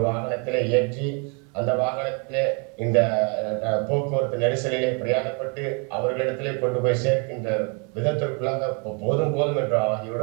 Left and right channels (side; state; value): left; quieter; 35.6 dB